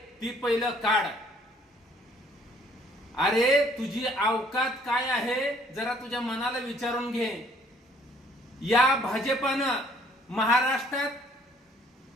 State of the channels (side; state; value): both; normal; correlation 0.60